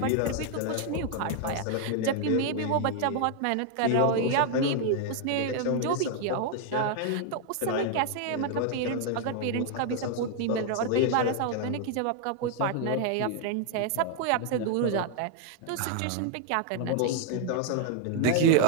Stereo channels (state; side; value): different; both; correlation 0.00